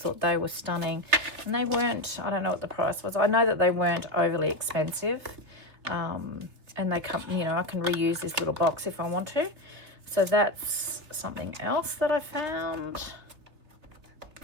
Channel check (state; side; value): late; left; 3.6 ms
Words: they were stunning. And they weren't, I don't know what the price was. I know that they weren't overly expensive. And they come, you know, I can reuse this little box if I want to. So that's something else that I found.